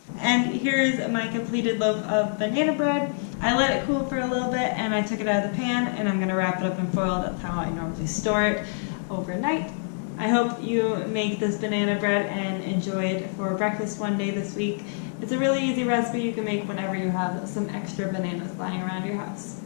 And here's my completed loaf of banana bread. I let it cool for a little bit and I took it out of the pan, and I'm going to wrap it up in foil. That's how I normally store it overnight. I hope you make this banana bread and enjoy it for breakfast one day this week. It's a really easy recipe you can make whenever you have some extra bananas lying around your house.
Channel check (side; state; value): right; silent; digital silence